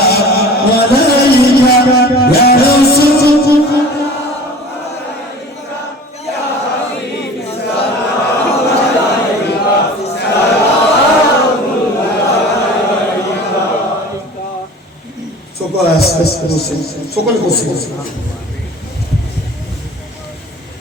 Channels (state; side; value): normal; both; correlation 0.41